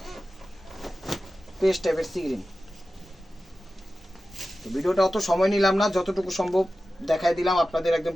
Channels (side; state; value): both; normal; correlation 0.94